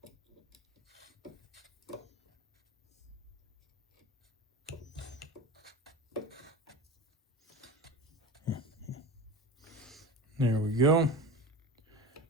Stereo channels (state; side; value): normal; both; correlation 0.30